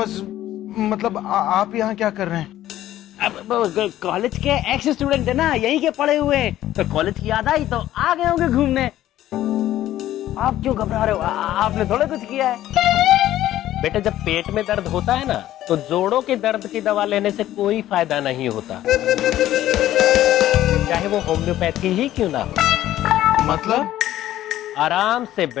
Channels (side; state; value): right; quieter; 13.5 dB